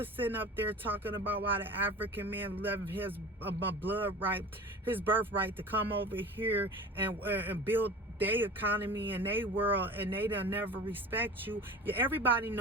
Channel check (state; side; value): normal; both; correlation 0.37